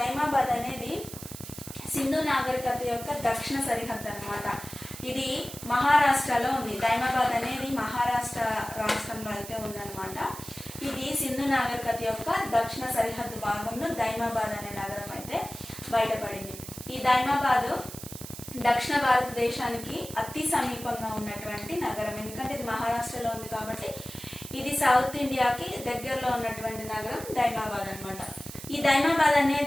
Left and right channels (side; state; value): right; noise; hiss, 12 dB below the sound